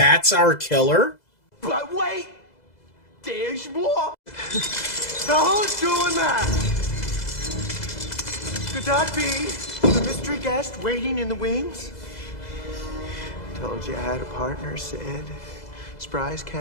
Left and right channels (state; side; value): late; right; 2.0 ms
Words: our killer? But wait! There's more! Now who's doing that? Could that be the mystery guest waiting in the wings? Told you I had a partner, Sid. Surprise